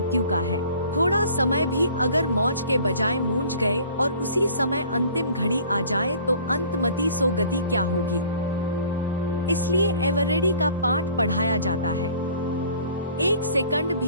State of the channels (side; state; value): both; inverted; correlation -0.50